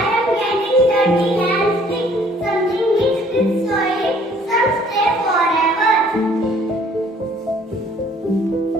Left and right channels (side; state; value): both; normal; correlation 0.58